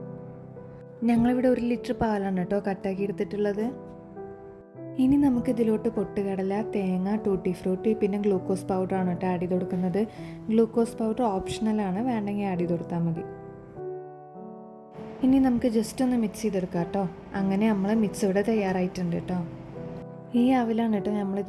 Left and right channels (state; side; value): identical; both; correlation 1.00